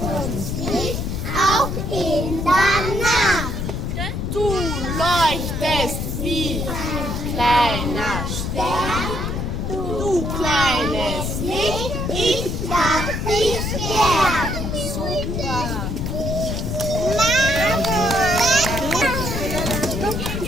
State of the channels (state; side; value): noise; left; rumble, 3 dB below the sound